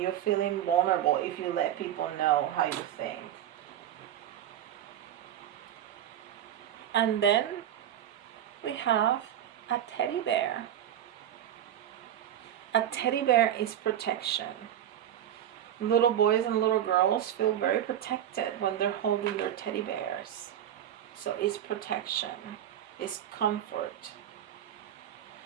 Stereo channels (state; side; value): quieter; left; 10.9 dB